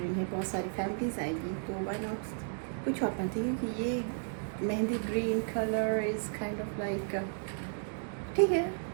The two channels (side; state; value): left; silent; digital silence